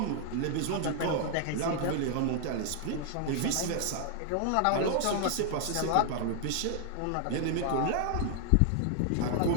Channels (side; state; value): both; different; correlation 0.00